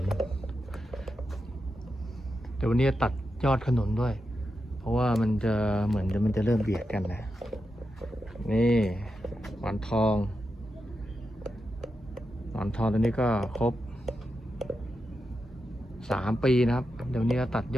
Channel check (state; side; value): normal; both; correlation 0.88